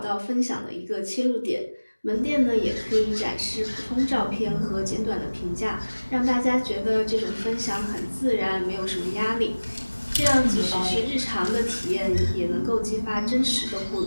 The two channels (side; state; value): both; inverted; correlation -1.00